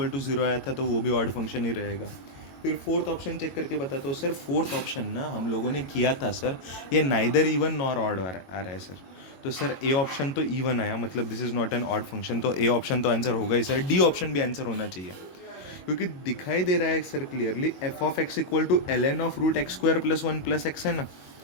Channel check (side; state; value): right; late; 22 ms